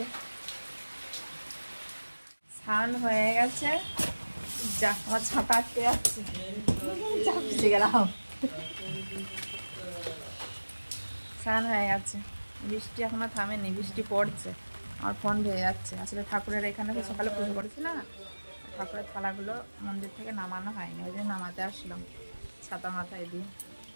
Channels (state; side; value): inverted; both; correlation -1.00